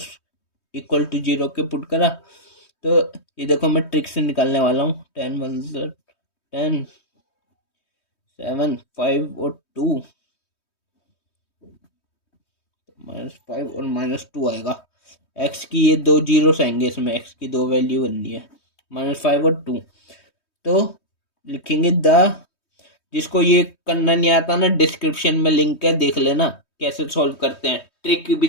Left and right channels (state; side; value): late; right; 3.2 ms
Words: इक्वल टू 0 के पुट करा। तो ये देखो मैं ट्रिक से निकालने वाला हूँ, 10 1 10 7 5 और 2 -5 और -2 आएगा। एक्स की ये दो जीरोस आएंगे इसमें, एक्स की दो वैल्यू बननी है, -5 और 2। तो लिखेंगे जिसको ये करना नहीं आता ना, डिस्क्रिप्शन में लिंक है, देख लेना कैसे सॉल्व करते हैं। ट्रिक भी